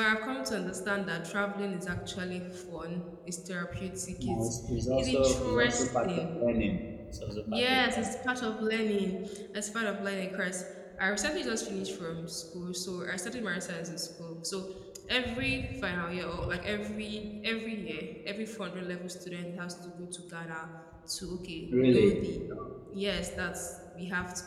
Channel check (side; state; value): both; identical; correlation 1.00